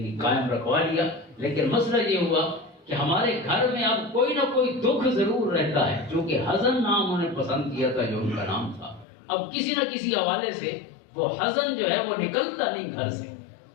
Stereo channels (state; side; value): drops out; right; at 9.1 s